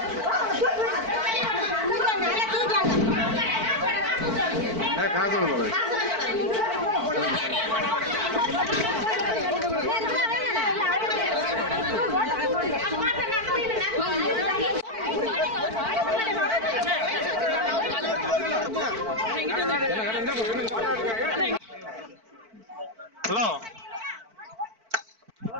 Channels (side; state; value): left; late; 4.5 ms